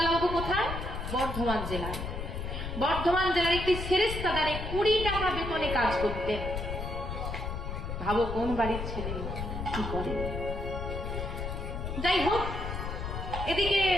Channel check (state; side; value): noise; left; rumble, 5 dB below the sound